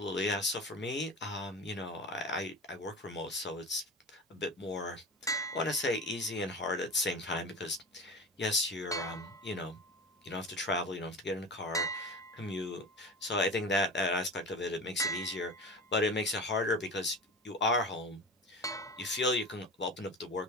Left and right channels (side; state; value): both; normal; correlation 0.30